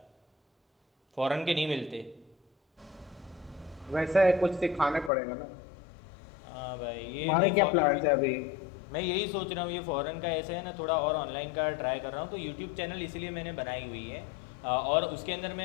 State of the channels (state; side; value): drops out; right; at 5.1 s